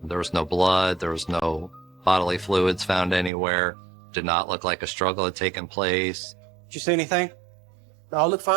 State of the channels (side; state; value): left; drops out; at 3.3 s